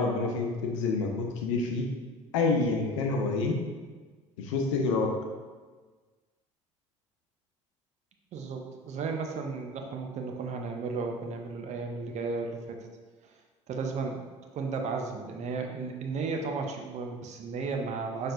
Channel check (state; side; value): normal; both; correlation 0.34